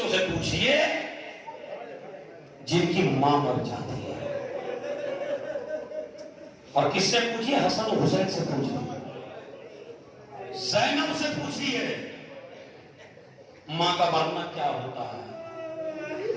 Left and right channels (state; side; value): identical; both; correlation 1.00